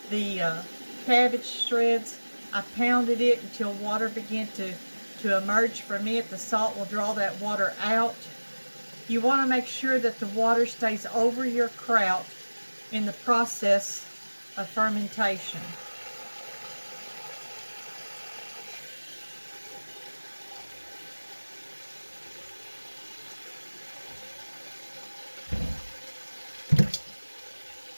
the cabbage shreds. I pounded it until water began to emerge from it. The salt will draw that water out. You want to make sure that the water stays over your kraut in the process of fermentation.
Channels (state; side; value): inverted; both; correlation -1.00